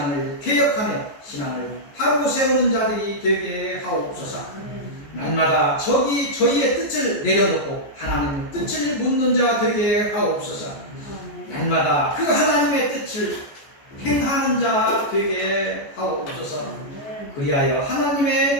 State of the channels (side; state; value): right; late; 14 ms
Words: 개혁하며 신앙을 바로 세우는 자들이 되게 하옵소서. 날마다 저희의 뜻을 내려놓고 하나님의 뜻을 묻는 자 되게 하옵소서. 날마다 그 하나님의 뜻을 행하는 자 되게 하옵소서. 그리하여